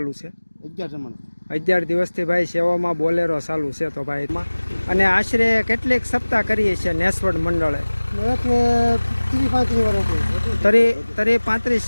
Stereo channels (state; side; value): inverted; both; correlation -1.00